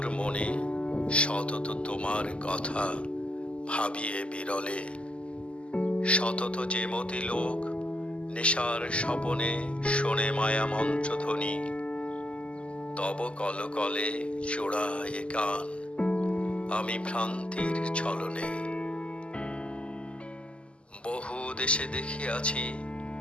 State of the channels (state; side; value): late; right; 0.055 ms